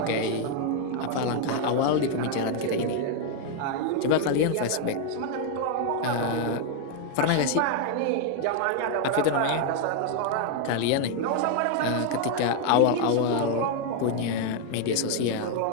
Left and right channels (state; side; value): different; both; correlation 0.00